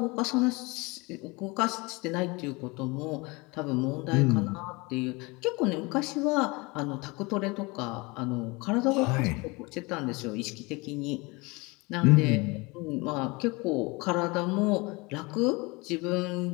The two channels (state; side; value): quieter; right; 25.6 dB